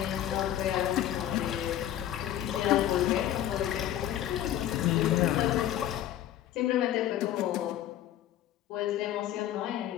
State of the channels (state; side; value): quieter; right; 12.0 dB